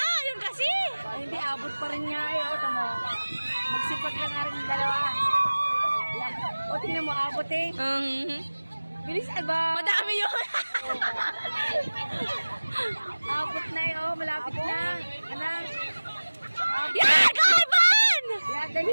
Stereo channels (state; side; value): inverted; both; correlation -1.00